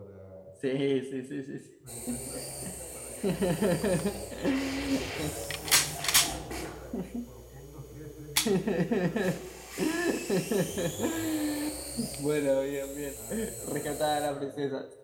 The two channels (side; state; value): both; identical; correlation 1.00